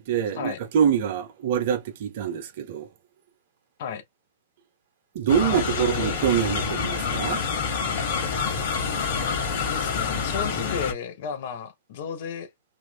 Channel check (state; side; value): inverted; both; correlation -0.36